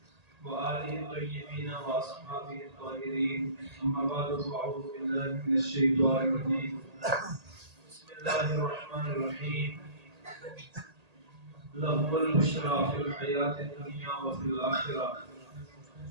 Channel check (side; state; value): left; late; 1.8 ms